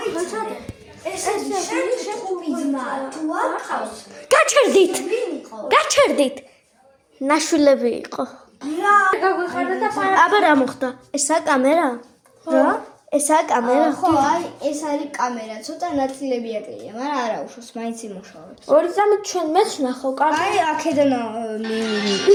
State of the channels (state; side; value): identical; both; correlation 1.00